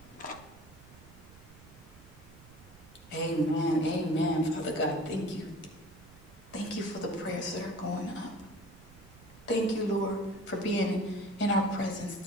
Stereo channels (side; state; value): right; noise; rumble, 21 dB below the sound